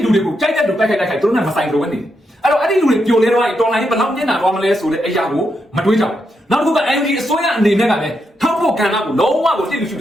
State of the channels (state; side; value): normal; both; correlation 0.82